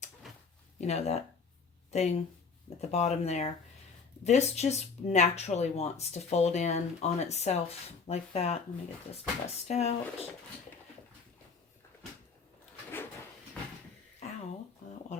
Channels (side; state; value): right; quieter; 5.2 dB